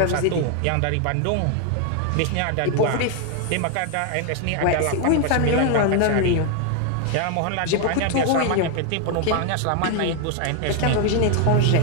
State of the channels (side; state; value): both; different; correlation 0.00